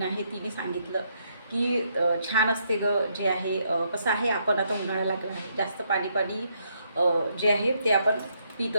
आहे तिने सांगितलं की छान असते गं. जे आहे कसं आहे, आपण आता उन्हाळा लागला आहे, जास्त पाणी पाणी जे आहे ते आपण पित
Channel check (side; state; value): both; inverted; correlation -0.75